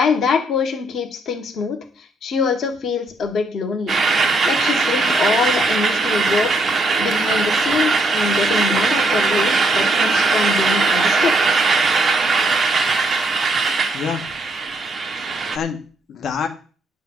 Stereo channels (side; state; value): both; normal; correlation 0.72